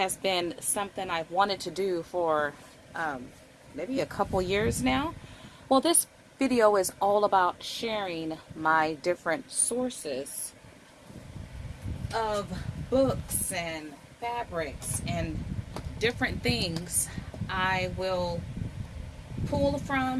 been something I've wanted to do for maybe a couple years now. Well, this video is all about sharing my different sources of books and fabrics and different things I will pull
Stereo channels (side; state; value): both; identical; correlation 1.00